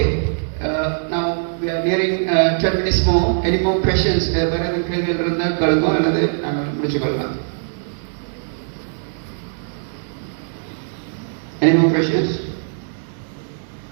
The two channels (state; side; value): silent; left; digital silence